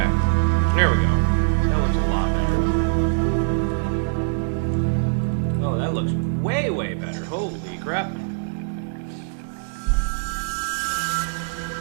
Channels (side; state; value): left; silent; digital silence